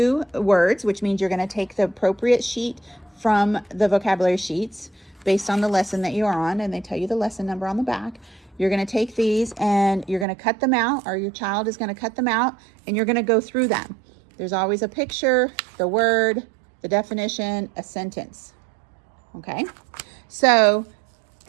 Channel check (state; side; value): drops out; left; at 10.2 s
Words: words, which means you're going to take the appropriate sheet from the vocabulary sheets based on the lesson that you're on, and they tell you the lesson number on the back. You're going to take these and you're going to cut them out, or your child is going to cut them out, and you're going to go through them. There's always a picture, the word, the definition, a sentence. Okay? So,